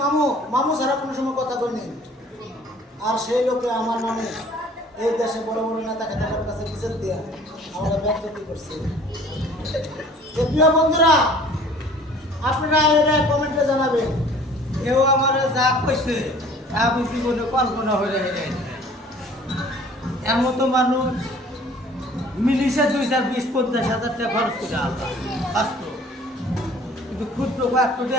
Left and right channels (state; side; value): normal; both; correlation 0.51